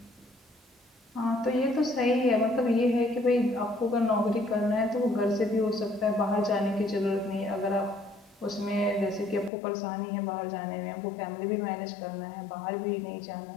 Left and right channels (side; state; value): right; drops out; at 9.5 s